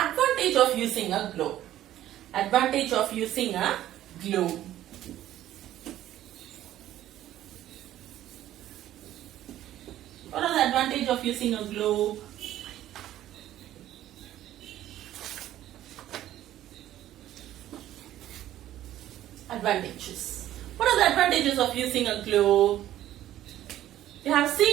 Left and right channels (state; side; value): quieter; left; 13.1 dB